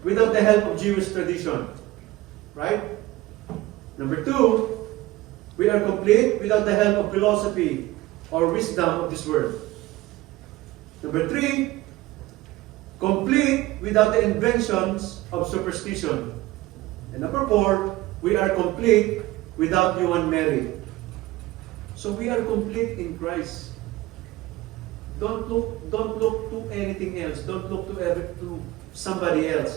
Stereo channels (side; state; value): left; quieter; 18.2 dB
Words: without the help of Jewish tradition. Right? Number two, we are complete without the help of philosophy or wisdom of this world. Number three, complete without the inventions of superstition. And number four, we are complete without human merit. So we are complete in Christ. Don't look to anything else. Don't look to somebody